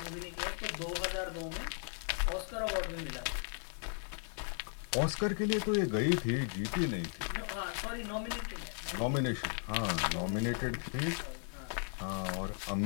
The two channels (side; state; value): right; silent; 54 dB below the other